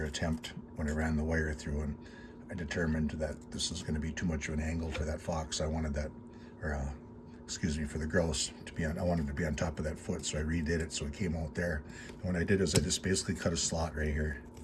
attempt when I ran the wire through, and I determined that this is going to be too much of an angle for that fox. I wanted that, or excuse me, for the grouse to be on, I wanted to be on top of that foot, so I redid it so it came out there. And what I did is I just basically cut a slot right here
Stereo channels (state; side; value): identical; both; correlation 1.00